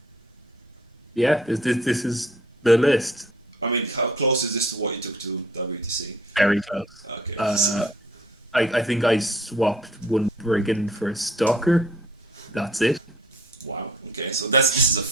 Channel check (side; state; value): both; normal; correlation 0.55